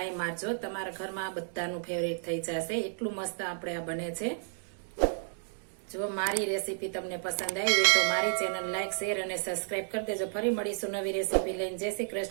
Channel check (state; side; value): silent; left; digital silence